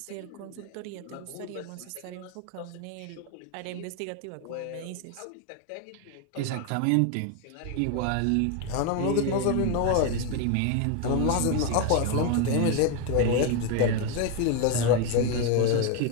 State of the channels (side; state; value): both; different; correlation 0.01